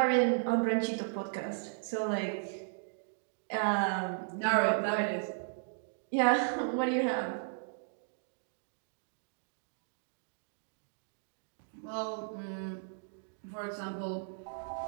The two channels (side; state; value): left; silent; digital silence